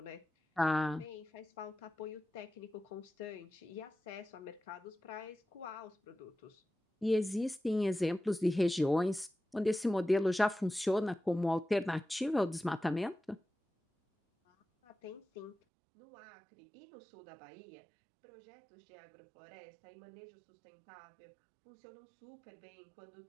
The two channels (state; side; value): drops out; left; at 15.6 s